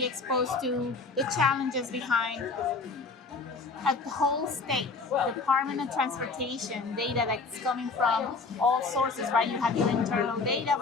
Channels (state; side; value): quieter; right; 4.1 dB